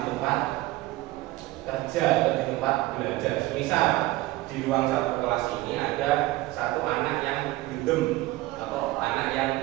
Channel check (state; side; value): quieter; left; 18.4 dB